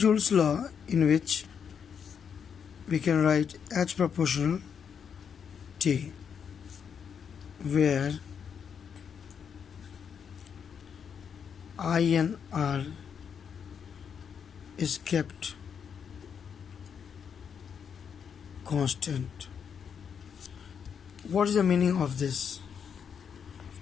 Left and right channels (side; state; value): right; quieter; 7.2 dB